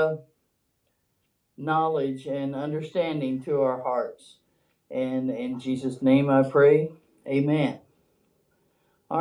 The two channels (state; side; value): identical; both; correlation 1.00